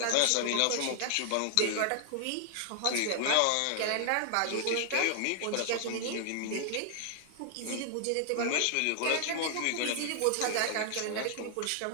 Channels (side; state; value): both; different; correlation 0.00